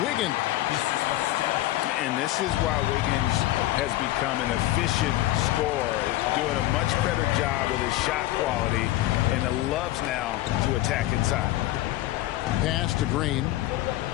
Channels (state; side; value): quieter; right; 15.8 dB